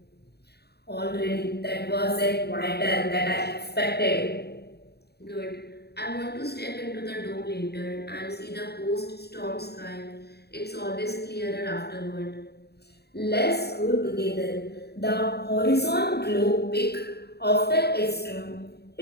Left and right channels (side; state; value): right; late; 0.47 ms